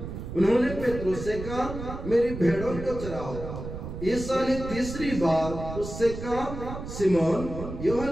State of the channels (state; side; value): noise; right; rumble, 8 dB below the sound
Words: उन्होंने पेट्रोस से कहा, मेरी भेड़ों को चराओ। यीशु ने तीसरी बार उससे कहा, सिमोन